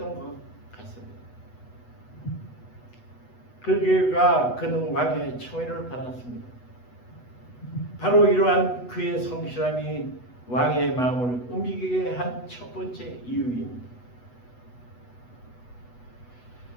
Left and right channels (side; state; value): right; late; 8.1 ms